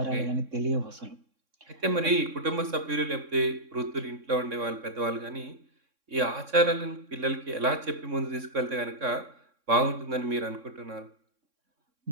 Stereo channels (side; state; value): left; late; 3.6 ms